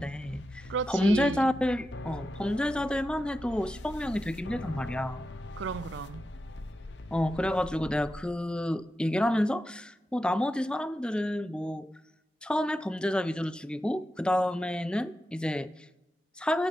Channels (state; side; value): normal; both; correlation 0.90